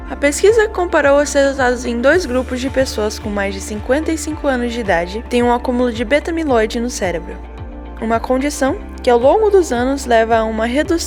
A pesquisa comparou os resultados em 2 grupos de pessoas com mais de 55 anos de idade que têm um acúmulo de beta-amiloide no cérebro, uma condição que ao longo dos anos leva a uma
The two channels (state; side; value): identical; both; correlation 1.00